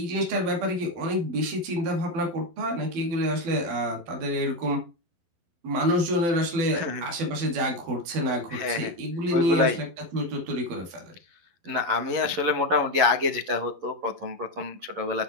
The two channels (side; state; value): left; late; 12 ms